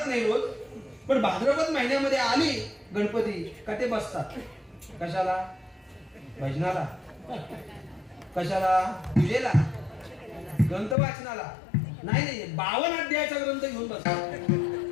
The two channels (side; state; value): right; drops out; at 11.0 s